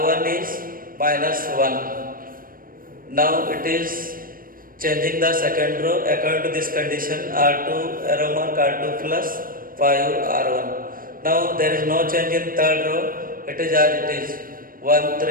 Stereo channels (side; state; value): left; late; 0.41 ms